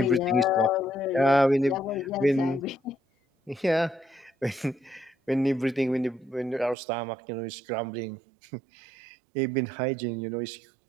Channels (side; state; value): left; drops out; at 6.8 s